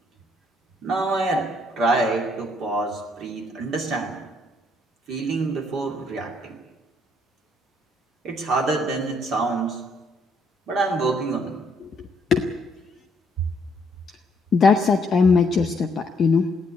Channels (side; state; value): both; normal; correlation 0.70